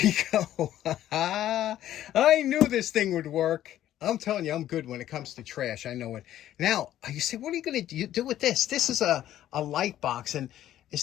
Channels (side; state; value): right; quieter; 12.4 dB